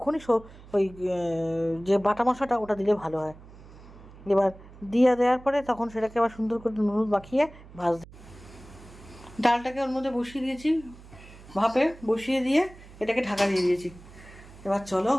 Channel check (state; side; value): noise; right; hum, 20 dB below the sound